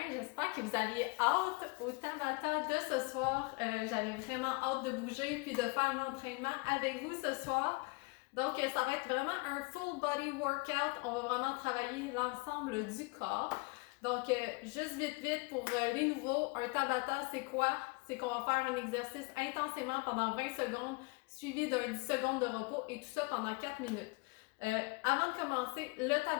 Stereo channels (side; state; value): right; quieter; 28.3 dB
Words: j'espère que vous aviez hâte au Tabata de ce soir. J'avais vraiment hâte de bouger puis de faire l'entraînement avec vous ce soir. Donc ça va être vraiment un full body workout, on va vraiment travailler l'ensemble du corps. Donc juste vite pour les nouveaux, un Tabata c'est quoi? C'est qu'on va faire un exercice intensément pendant 20 secondes suivi d'un 10 secondes de repos et tout ça pendant 4 minutes. Avant de commencer le